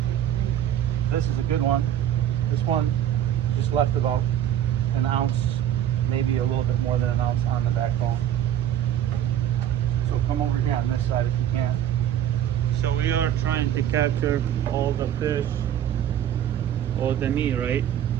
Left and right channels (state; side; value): quieter; left; 10.8 dB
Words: This is a good one. This one just left about an ounce, maybe a little bit more than an ounce on the backbone. So come over here on this side if you can. So we are trying to capture all the fish, all the meat, right?